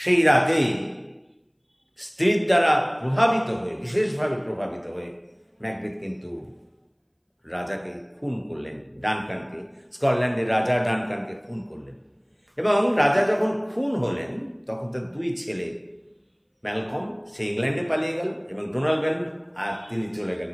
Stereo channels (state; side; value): identical; both; correlation 1.00